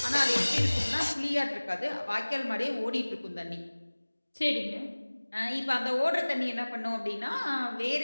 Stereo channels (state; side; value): inverted; both; correlation -1.00